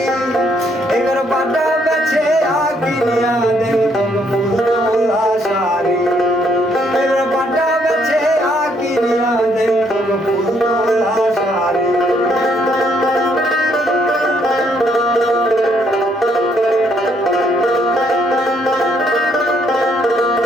এবার পাটা বেছে কিনিয়া দেব তোকে ফুল তোলা শাড়ি এবার পাটা বেছে কিনিয়া দেব তোকে ফুল তোলা শাড়ি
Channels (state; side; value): normal; both; correlation 0.70